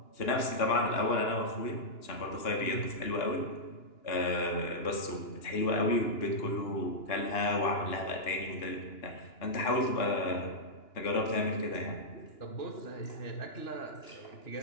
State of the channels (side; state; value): right; late; 2.9 ms